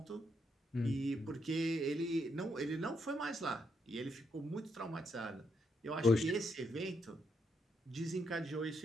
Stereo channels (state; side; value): normal; both; correlation 0.77